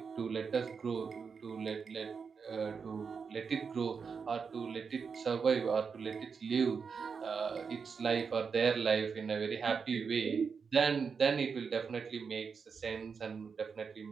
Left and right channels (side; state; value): left; quieter; 5.7 dB